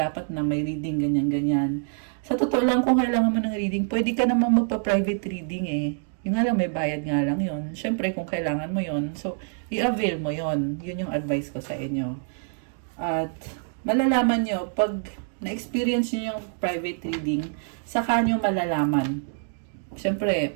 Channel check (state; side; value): silent; left; digital silence